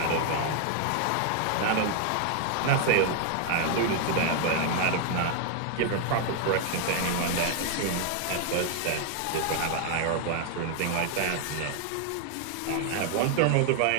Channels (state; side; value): different; both; correlation 0.00